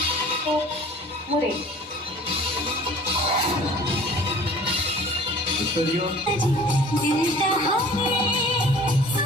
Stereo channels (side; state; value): both; normal; correlation 0.47